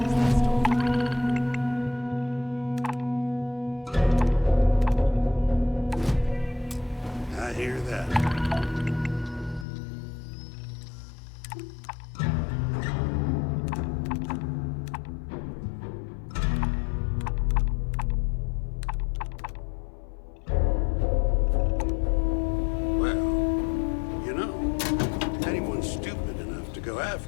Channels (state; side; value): drops out; right; at 9.7 s